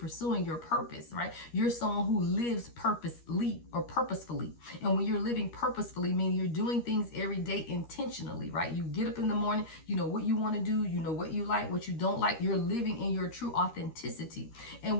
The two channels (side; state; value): right; late; 13 ms